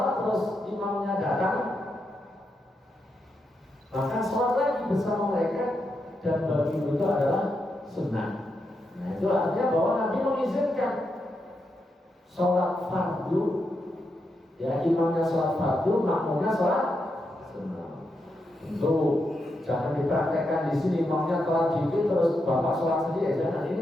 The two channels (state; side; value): normal; both; correlation 0.84